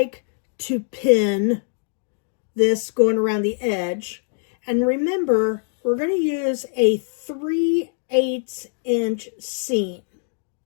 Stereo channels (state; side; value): silent; right; 60 dB below the other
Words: to pin this going around the edge. And remember, we're going to use a 3/8 inch seam.